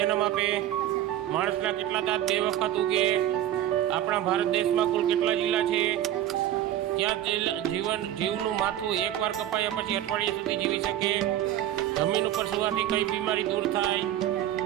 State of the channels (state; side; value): quieter; left; 12.1 dB